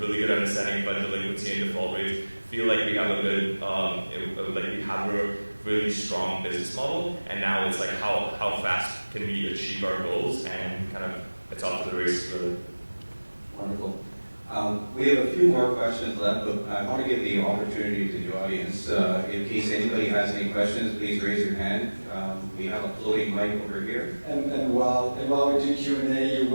good understanding about delinquency and default rates. Feel like we have a good, we have a really strong business model. And now it's like how fast can we achieve our goals, and kind of it's off to the races really. Wonderful. We have a few more questions left, but I want to give the opportunity to the audience. In case anybody has any questions, please raise your hand. We have a floating mic over here. And while we do Q&A, you're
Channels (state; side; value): inverted; both; correlation -1.00